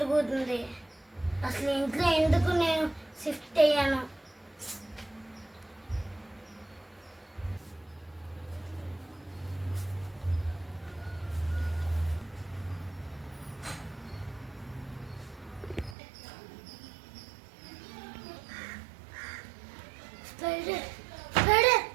అసలు ఇంట్లో ఎందుకు నేను షిఫ్ట్ అయ్యాను? స్పైడర్ స్పైడర్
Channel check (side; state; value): left; drops out; at 16.0 s